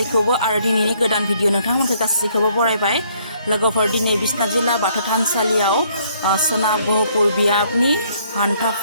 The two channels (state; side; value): inverted; both; correlation -0.66